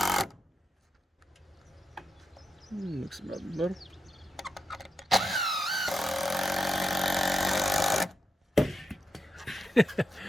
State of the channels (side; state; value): both; normal; correlation 0.86